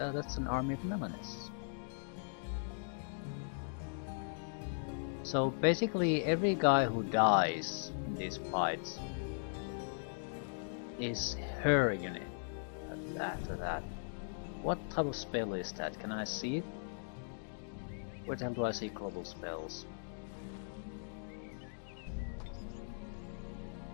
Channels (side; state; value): right; silent; digital silence